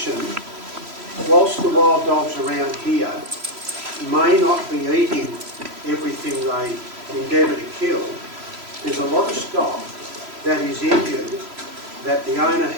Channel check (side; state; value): left; late; 3.0 ms